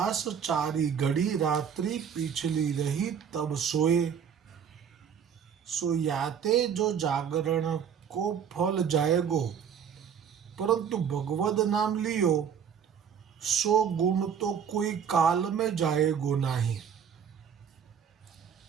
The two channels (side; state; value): left; quieter; 7.8 dB